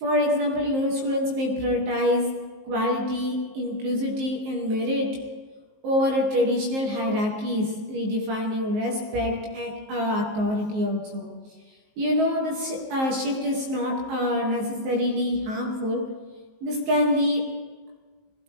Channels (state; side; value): late; left; 19 ms